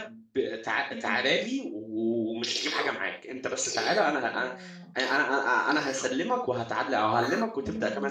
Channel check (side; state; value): both; identical; correlation 1.00